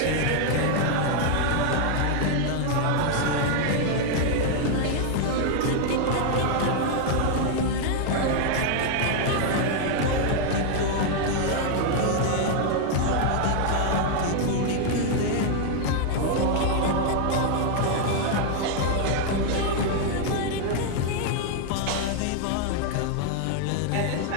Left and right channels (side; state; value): both; different; correlation 0.00